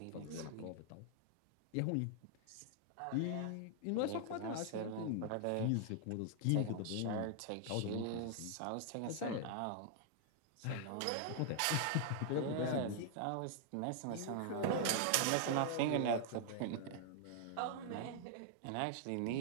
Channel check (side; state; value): both; different; correlation 0.00